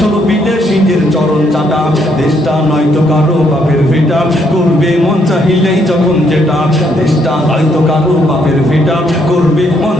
হলো বিদেশিদের চরণ চাটা। দেশটা নয়তো কারো বাপের ভিটা, করবে মন চাহিলেই যখন যেটা। দেশটা নয়তো কারো বাপের ভিটা, করবে মন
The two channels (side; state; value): both; normal; correlation 0.72